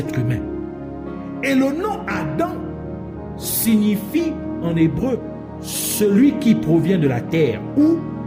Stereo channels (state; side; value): identical; both; correlation 1.00